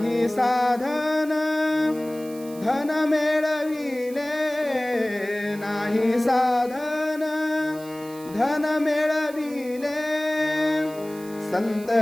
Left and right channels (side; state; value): right; noise; hiss, 20 dB below the sound